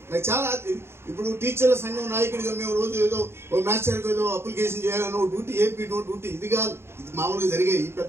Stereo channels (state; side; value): late; left; 0.12 ms